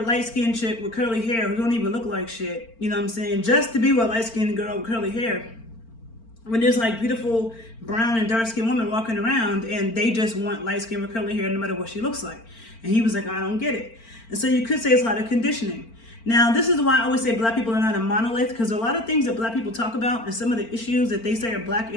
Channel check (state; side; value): late; right; 4.4 ms